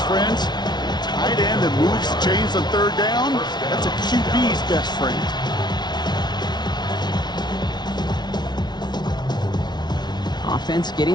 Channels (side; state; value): right; late; 0.20 ms